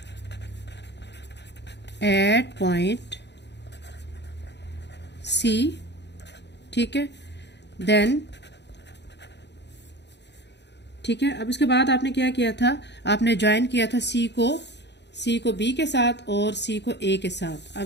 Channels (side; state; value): right; late; 0.50 ms